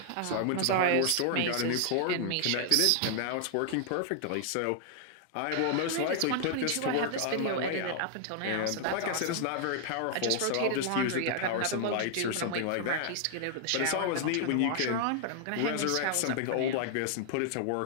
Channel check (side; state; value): both; different; correlation 0.00